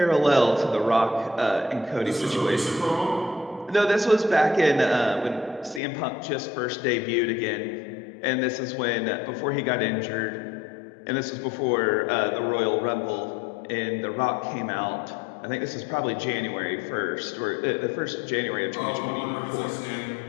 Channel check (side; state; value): right; drops out; at 5.8 s